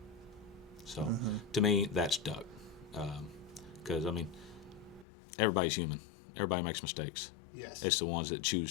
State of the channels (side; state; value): right; drops out; at 5.1 s